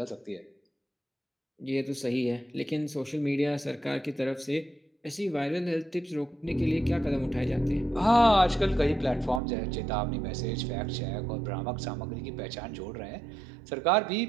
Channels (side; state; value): left; drops out; at 9.4 s